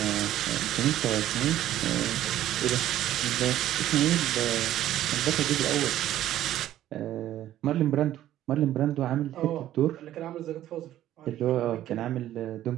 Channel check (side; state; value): left; quieter; 12.9 dB